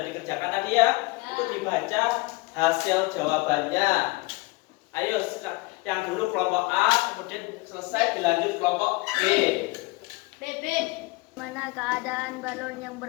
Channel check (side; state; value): right; quieter; 24.3 dB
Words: dikerjakan tadi ya? Itu dibaca hasil jawabannya. Ayo, yang dulu kelompok A, kemudian selesai dilanjut kelompok B. BB. Mana keadaan balon yang